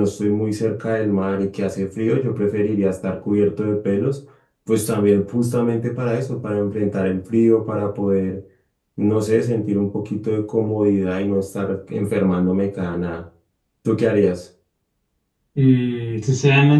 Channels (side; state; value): both; identical; correlation 1.00